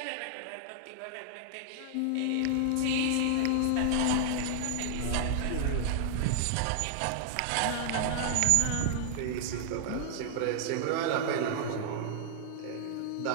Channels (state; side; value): different; both; correlation -0.01